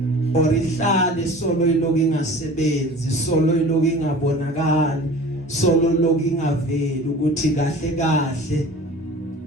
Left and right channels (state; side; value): normal; both; correlation 0.41